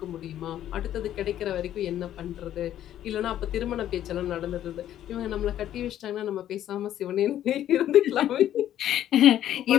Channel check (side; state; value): right; quieter; 11.6 dB